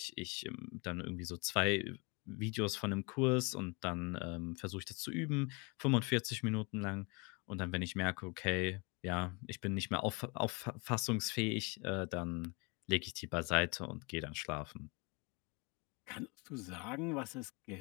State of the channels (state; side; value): quieter; right; 29.9 dB